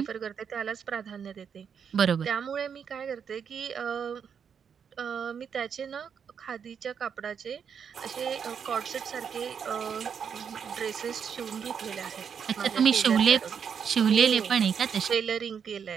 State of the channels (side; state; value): left; quieter; 7.2 dB